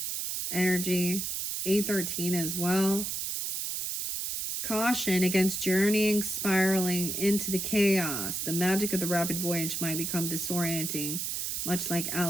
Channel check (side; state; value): right; noise; hiss, 2 dB below the sound